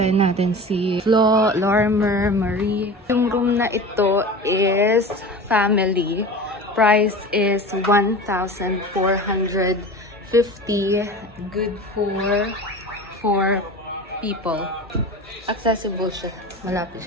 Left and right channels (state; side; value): normal; both; correlation 0.34